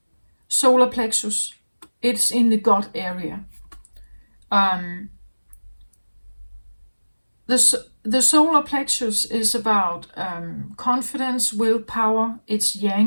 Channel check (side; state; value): both; inverted; correlation -1.00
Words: solar plexus. It's in the gut area. The solar plexus is about confidence, willpower. It's